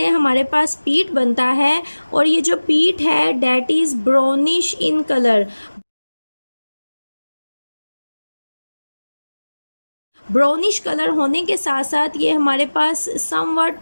हमारे पास पीट बनता है और ये जो पीट है that is brownish in colour. Brownish colour होने के साथ साथ ये हमारे पास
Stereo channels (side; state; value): both; inverted; correlation -1.00